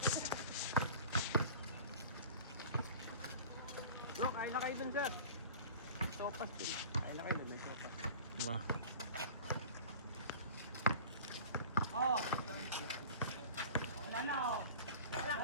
Bro, kain na kayo dun sir. Sopas dun. Kain na kayo dun. May sopas. Diba? Oh. Wala na oh.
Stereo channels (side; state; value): both; inverted; correlation -0.40